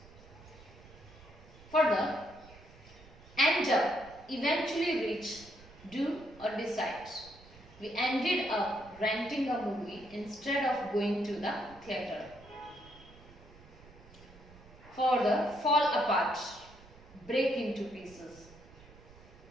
Further, end up, eventually reach, do or decide. We ended up renting a movie instead of going to the theatre. Further, fall apart, break into pieces.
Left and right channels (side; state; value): right; noise; rumble, 22 dB below the sound